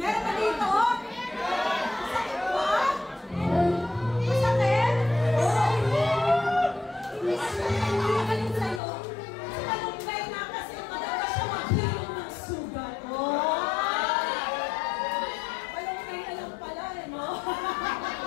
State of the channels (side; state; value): right; drops out; at 8.8 s